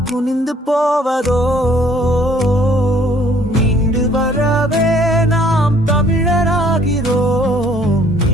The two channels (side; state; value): both; normal; correlation 0.60